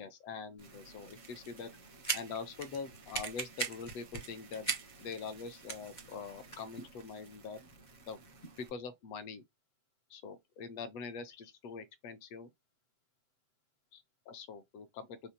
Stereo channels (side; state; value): right; late; 7.6 ms